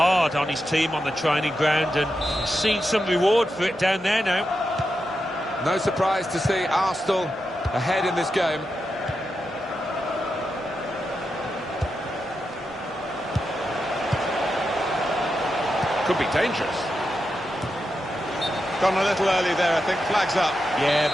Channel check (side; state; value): both; normal; correlation 0.88